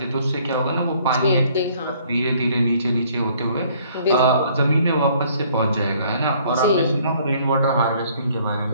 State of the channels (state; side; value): inverted; both; correlation -0.61